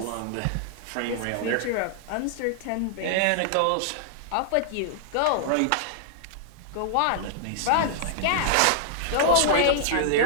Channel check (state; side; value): different; both; correlation -0.01